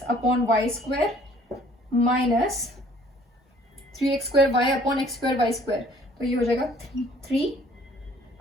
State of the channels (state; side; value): normal; both; correlation 0.57